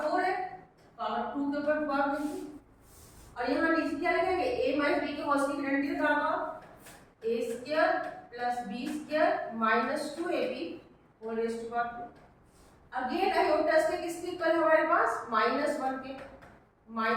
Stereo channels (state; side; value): identical; both; correlation 1.00